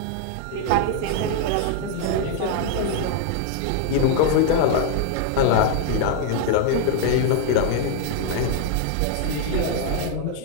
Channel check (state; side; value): different; both; correlation 0.00